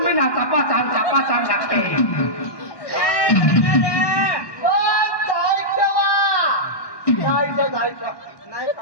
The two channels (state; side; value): late; right; 1.1 ms